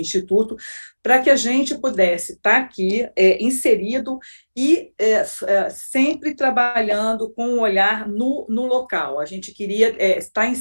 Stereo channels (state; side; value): inverted; both; correlation -1.00